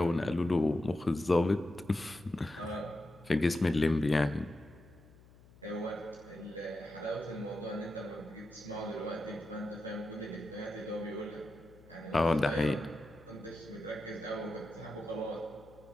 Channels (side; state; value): left; noise; hum, 24 dB below the sound